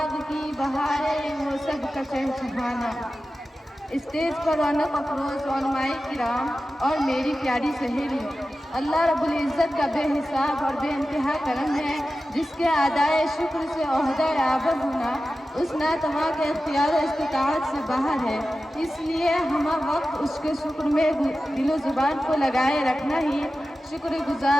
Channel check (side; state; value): both; normal; correlation 0.94